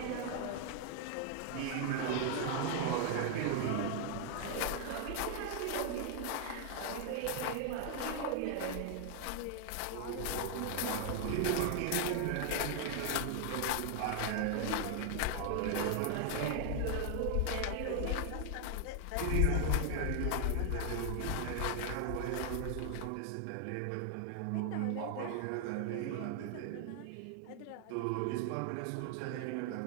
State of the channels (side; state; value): both; different; correlation 0.00